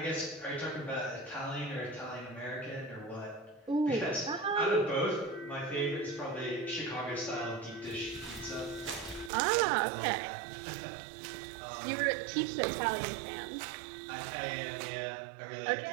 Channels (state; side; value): drops out; left; at 9.3 s